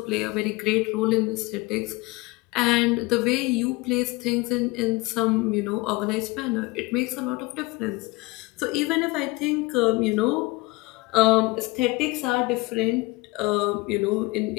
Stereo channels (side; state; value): right; quieter; 23.2 dB